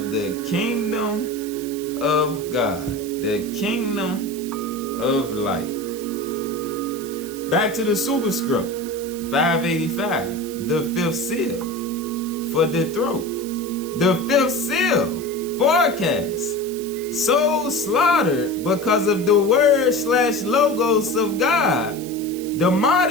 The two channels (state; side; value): noise; right; hiss, 15 dB below the sound